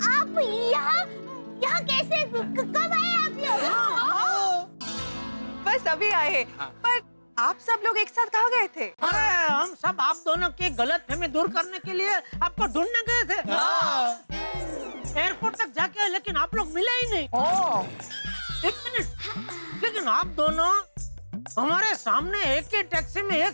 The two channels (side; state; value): both; inverted; correlation -1.00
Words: यहाँ कैसे, कब आए आप लोग? बस अभी आए हैं। पर आप सब लोग एक साथ कहाँ गए थे? अरे हम सब आप दोनों की गलतफहमी दूर करने के लिए आपको ढूंढने गए थे। एयरपोर्ट तक जाके आए, लेकिन आप लोग मिले ही नहीं। एक मिनट, लेकिन आप दोनों हमारे सामने एक ही टैक्सी में